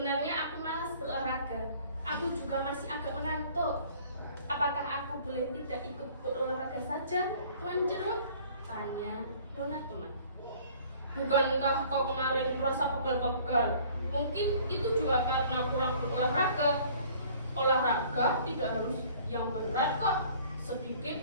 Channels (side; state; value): both; inverted; correlation -0.53